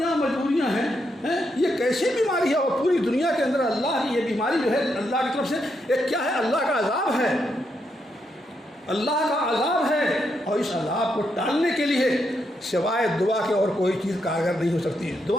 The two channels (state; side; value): normal; both; correlation 0.80